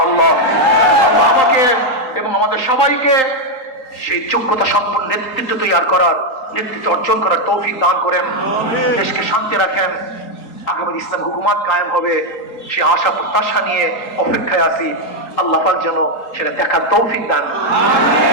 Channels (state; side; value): late; right; 3.9 ms